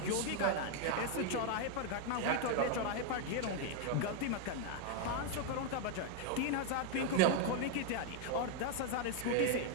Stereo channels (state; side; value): different; both; correlation 0.01